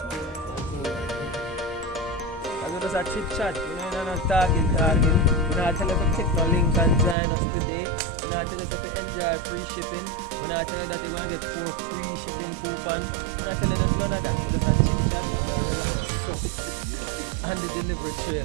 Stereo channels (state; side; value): drops out; left; at 7.2 s